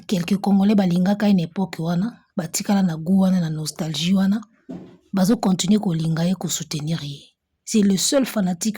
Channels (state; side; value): identical; both; correlation 1.00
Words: quelques Congolais balingaka une époque wana batikala na goût wana na nostalgie wana bazo continuer ko linga ye ko soutenir ye c'est le seul